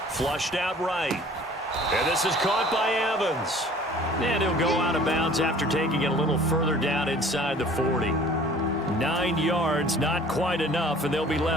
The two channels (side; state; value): both; normal; correlation 0.50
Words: Flushed out right. And this is caught by Evans. And he'll go out of bounds after taking it a little further down inside the 40. 9 yards, not quite enough, and they'll be